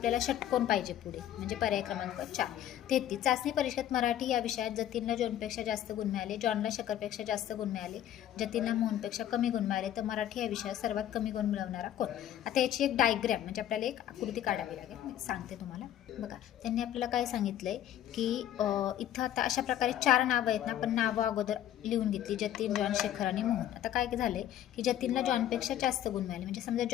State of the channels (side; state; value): right; quieter; 11.5 dB